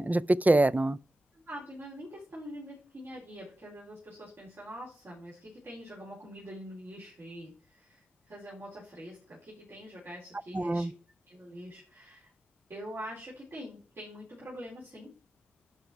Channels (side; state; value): both; normal; correlation 0.94